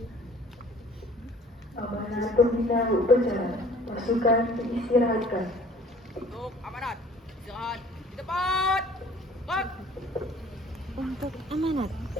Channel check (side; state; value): both; normal; correlation 0.52